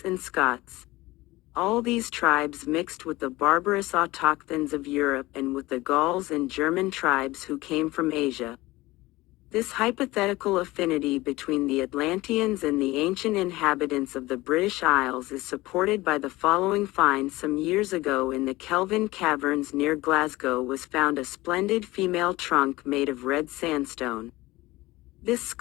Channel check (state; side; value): quieter; right; 19.6 dB